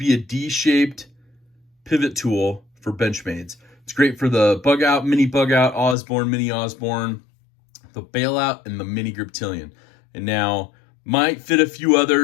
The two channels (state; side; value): drops out; right; at 6.0 s